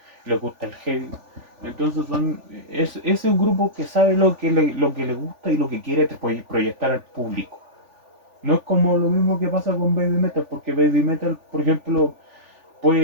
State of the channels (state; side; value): late; left; 3.4 ms